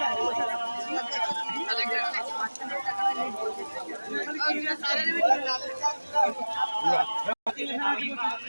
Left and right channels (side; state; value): both; inverted; correlation -1.00